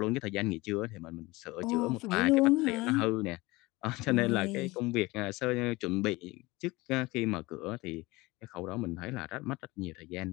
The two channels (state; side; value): quieter; right; 21.8 dB